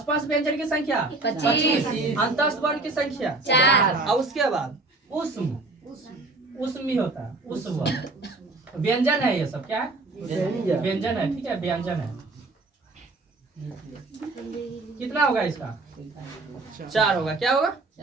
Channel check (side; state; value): left; quieter; 3.2 dB